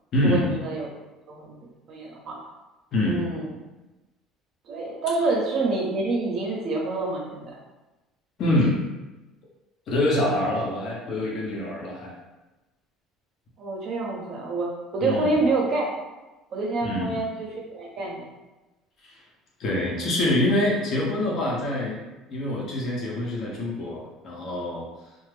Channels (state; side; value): normal; both; correlation 0.43